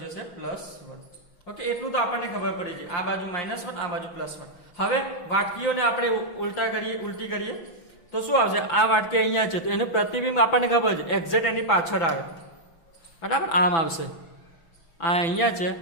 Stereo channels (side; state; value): right; late; 5.9 ms